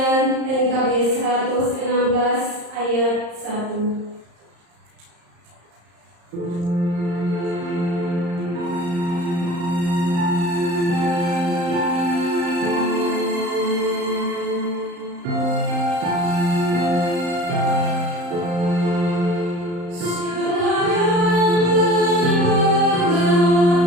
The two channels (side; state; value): left; late; 34 ms